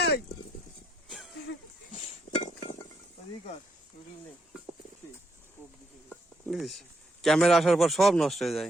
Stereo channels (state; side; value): normal; both; correlation 0.76